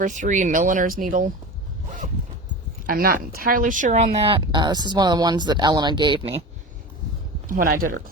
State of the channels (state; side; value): normal; both; correlation 0.30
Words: 3 milliner's needle. I'm not entirely sure on that. This is one of the ones that Elena gave me when I did her